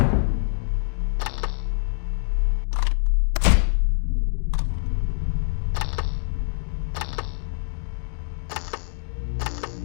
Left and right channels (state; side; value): silent; right; digital silence